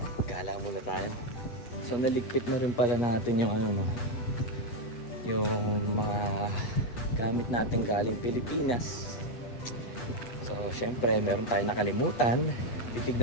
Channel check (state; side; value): late; right; 8.4 ms